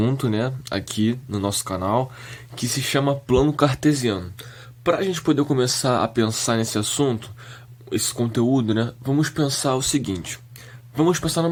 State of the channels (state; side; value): identical; both; correlation 1.00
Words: né, aqui no nosso canal, que se chama plano cartesiano. Para a gente poder começar a pensar nesse assunto, esse conteúdo, né, vamos pensar o seguinte. Vamos pensar